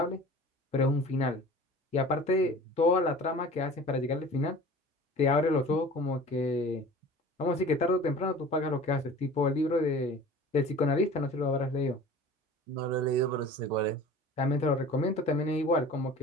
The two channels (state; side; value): normal; both; correlation 0.41